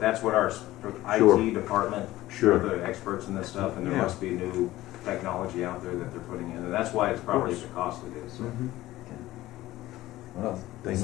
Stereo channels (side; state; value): right; quieter; 16.3 dB